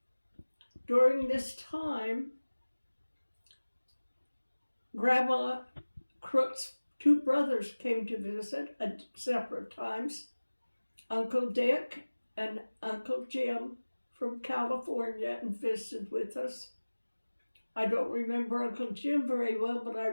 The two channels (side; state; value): both; inverted; correlation -1.00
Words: During this time, Grandma Crook's two brothers came to visit at separate times. Uncle Dick and Uncle Jim from California and visited with us. I don't remember Uncle Jim very well, but I